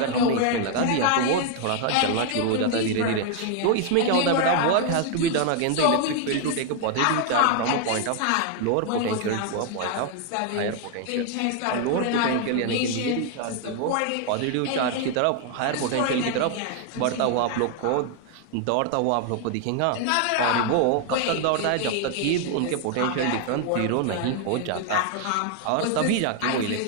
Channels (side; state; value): both; different; correlation 0.00